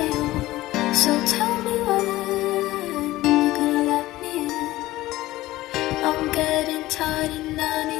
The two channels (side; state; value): right; quieter; 17.1 dB